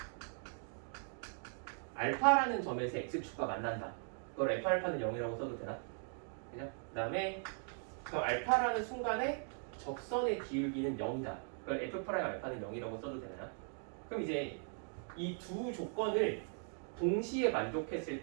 알파라는 점에서 x축과 만난다. 그걸 f알파는 0이라고 써도 되나? 그죠? 그 다음에 그 알파라는 순간에 접선의 기울기는 0이다. 그걸 f 프라임 알파는 0이라고 써도 되나요? 그럼 이제 이 두 조건을 동시에 만족했을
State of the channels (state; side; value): silent; left; 52 dB below the other